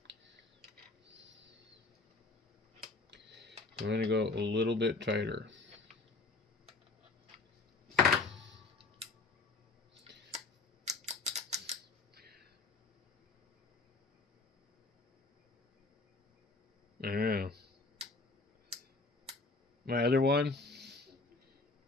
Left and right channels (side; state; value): right; quieter; 3.5 dB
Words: I'm going to go a little bit tighter. I don't know. My other one,